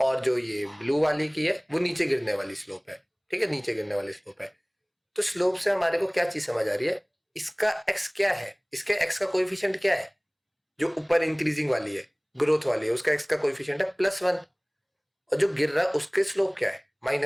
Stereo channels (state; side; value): identical; both; correlation 1.00